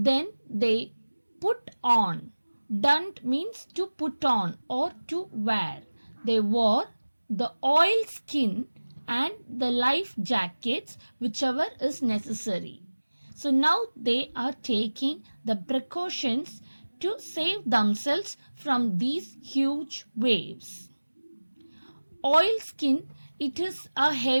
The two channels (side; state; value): both; inverted; correlation -1.00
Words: they put on. Donned means to put on or to wear. They wore the oil skin and the life jackets, whichever is necessary. So now they are taking the precautions to save themselves from these huge waves. Oilskin, it is a